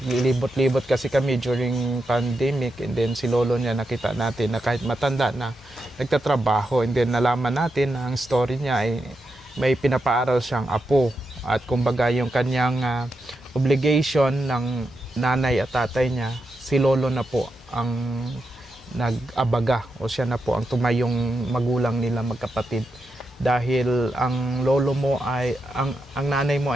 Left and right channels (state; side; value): normal; both; correlation 0.86